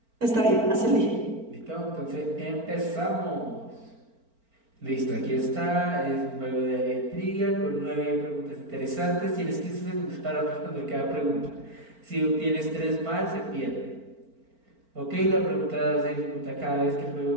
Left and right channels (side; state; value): left; late; 4.4 ms